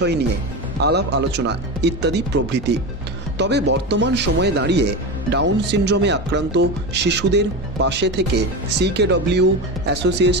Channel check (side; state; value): both; normal; correlation 0.21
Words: নিয়ে আলাপ আলোচনা ইত্যাদি প্রভৃতি। তবে বর্তমান সময়ে দাঁড়িয়ে ডাউন সিনড্রোমে আক্রান্ত শিশুদের পাশে থেকে CKW